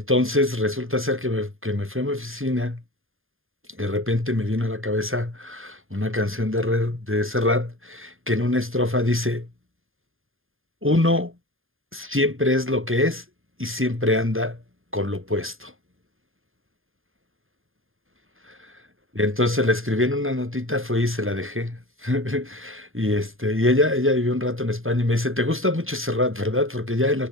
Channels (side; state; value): left; late; 0.60 ms